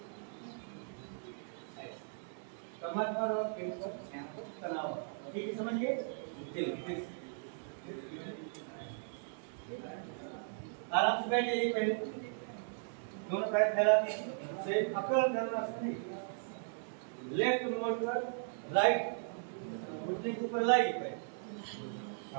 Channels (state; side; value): silent; left; digital silence